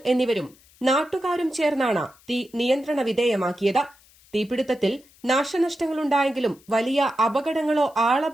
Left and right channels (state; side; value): noise; left; hiss, 28 dB below the sound